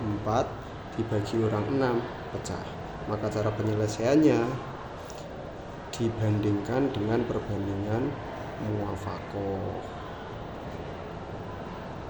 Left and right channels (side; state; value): both; identical; correlation 1.00